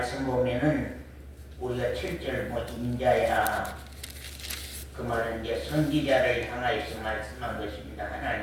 보면은 우리가 7절 인자야 그 말은 이제 선지자를 향하여서 말씀한 것입니다.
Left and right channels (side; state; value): both; identical; correlation 1.00